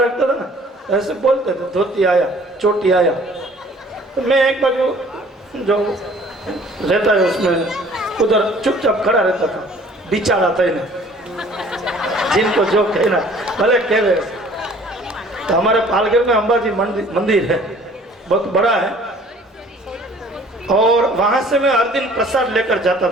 था ना, ऐसे बोलते थे धोती आया, चोटी आया। तो मैं एक बार जो रहता है उसमें उधर चुपचाप खड़ा रहता था। बिचारा था इन्हें, जिनको जो कहना भले कह रहे। तो हमारे पालघर में अंबाजी मंदिर है, बहुत बड़ा है, और वहां से मैं हर दिन प्रसाद लेकर जाता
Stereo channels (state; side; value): normal; both; correlation 0.53